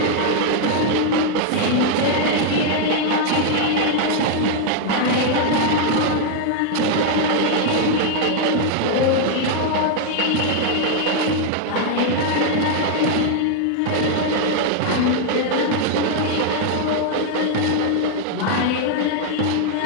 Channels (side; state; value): both; different; correlation 0.00